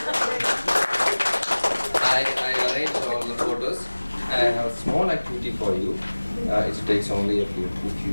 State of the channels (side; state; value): both; inverted; correlation -1.00